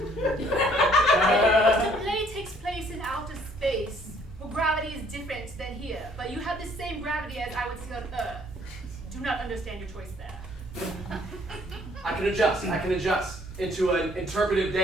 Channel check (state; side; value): normal; both; correlation 0.61